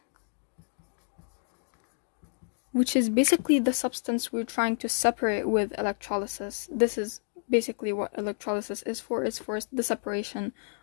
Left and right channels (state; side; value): silent; right; digital silence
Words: which is basically the substance we're trying to separate with electrolysis. This is basically what electrolysis is for. It's for the separation